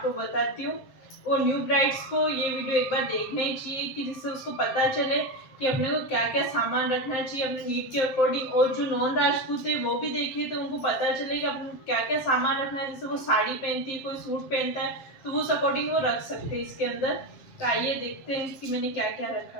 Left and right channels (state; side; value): late; right; 7.6 ms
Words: बताती हूँ। और न्यू ब्राइड्स को ये वीडियो एक बार देखना ही चाहिए कि जिससे उसको पता चले कि अपने को क्या क्या सामान रखना चाहिए अपने नीड के अकॉर्डिंग। और जो नॉन राजपूत है वो भी देखे तो उनको पता चले कि अपने क्या क्या सामान रखना है। जैसे वो साड़ी पहनती है, कोई सूट पहनता है तो उस अकॉर्डिंग वो रख सकते हैं इसके अंदर। तो आइए देखते हैं कि मैंने क्या क्या रखा